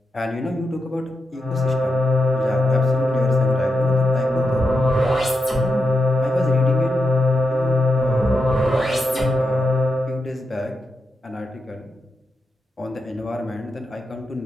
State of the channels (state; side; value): normal; both; correlation 0.86